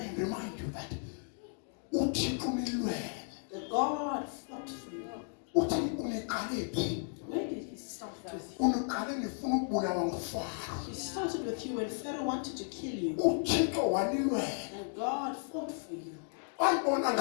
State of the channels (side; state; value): right; silent; 55 dB below the other